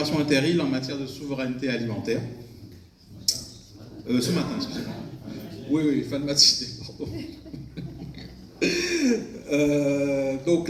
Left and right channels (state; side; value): identical; both; correlation 1.00